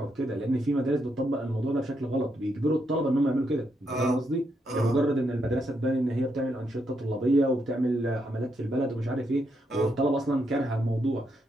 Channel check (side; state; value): both; normal; correlation 0.79